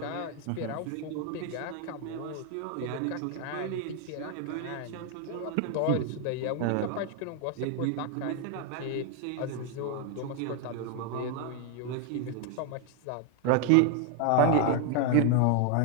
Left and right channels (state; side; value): different; both; correlation 0.01